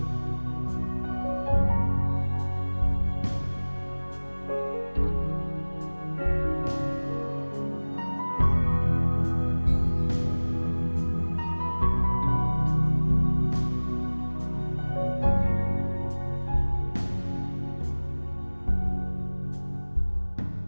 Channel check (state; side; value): inverted; both; correlation -1.00